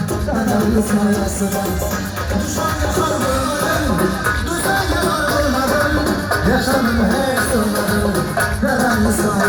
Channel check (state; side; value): identical; both; correlation 1.00